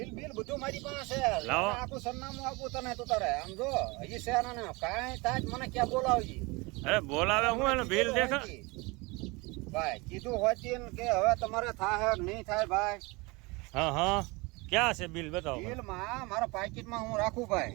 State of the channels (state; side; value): quieter; left; 25.7 dB